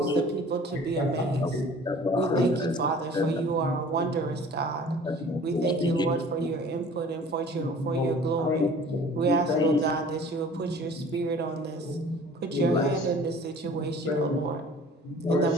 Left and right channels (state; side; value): normal; both; correlation 0.48